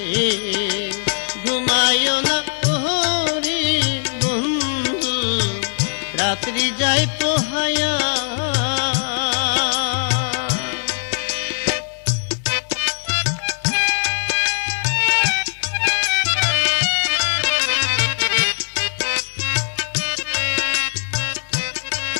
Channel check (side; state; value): right; silent; digital silence